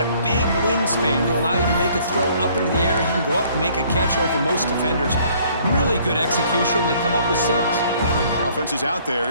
a big wingspan to allow you to make a throw up into the air. He can go up and make a catch over most defenders. Really good execution. They come up with 6. The offense is out there.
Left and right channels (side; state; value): both; inverted; correlation -0.60